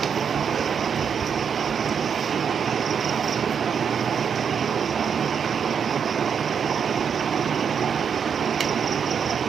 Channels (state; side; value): quieter; left; 7.0 dB